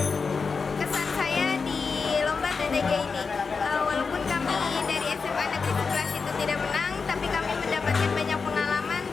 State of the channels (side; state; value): right; quieter; 5.0 dB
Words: kesan saya di lomba TDG ini. Walaupun kami dari SMA Negeri 11 itu tidak menang, tapi kami mendapatkan banyak pengalaman